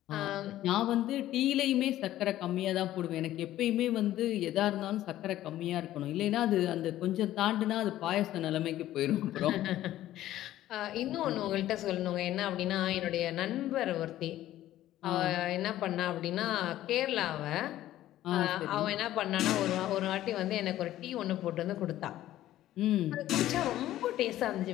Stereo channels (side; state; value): right; quieter; 13.8 dB